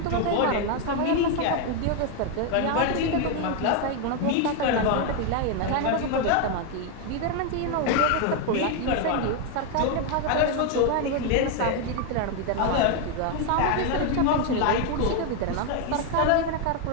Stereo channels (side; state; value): both; different; correlation 0.01